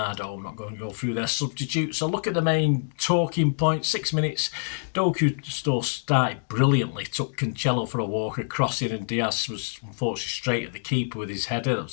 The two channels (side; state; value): right; silent; digital silence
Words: I'm not going to go through their substitutes. So look at the main talking points. 6 minutes, Doku started brilliantly, took Cancelo for a walk across it, and Diaz was unfortunately straight at the keeper with his header. That